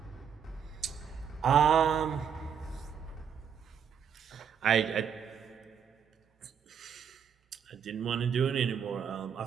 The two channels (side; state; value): left; quieter; 7.7 dB